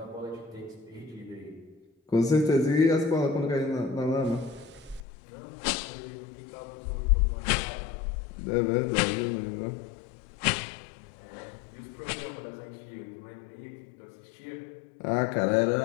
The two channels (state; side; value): drops out; right; at 5.0 s